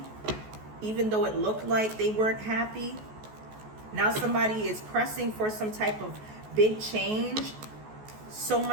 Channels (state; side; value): late; left; 14 ms